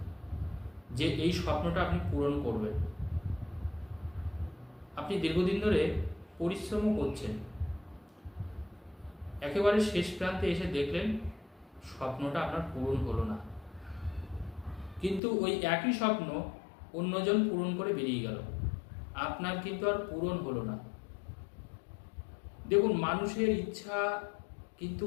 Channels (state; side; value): drops out; right; at 15.2 s